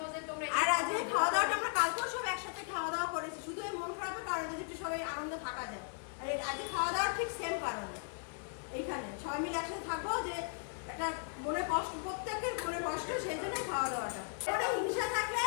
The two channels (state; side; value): silent; right; 53 dB below the other